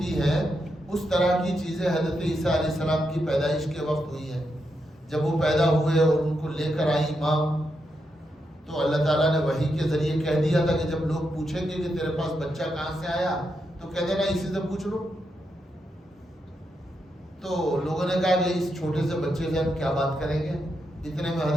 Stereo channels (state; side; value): normal; both; correlation 0.84